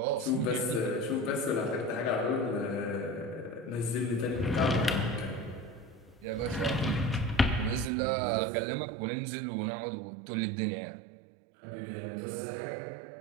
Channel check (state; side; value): drops out; left; at 7.9 s